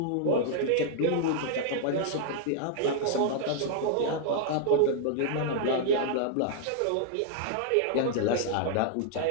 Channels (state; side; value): different; both; correlation -0.01